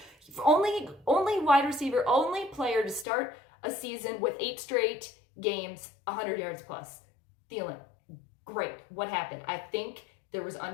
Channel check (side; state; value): right; drops out; at 3.1 s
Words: Only wide receiver, only player to start a season with 8 straight games, 100 yards plus. Thielen, great. What happened? I think there was